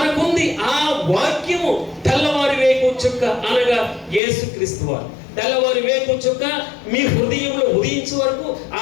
ఆ వాక్యము తెల్లవారి వేకు చుక్క అనగా యేసుక్రీస్తు వారు. తెల్లవారి వేకు చుక్క మీ హృదయంలో ఉదయించే వరకు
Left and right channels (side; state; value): right; drops out; at 4.2 s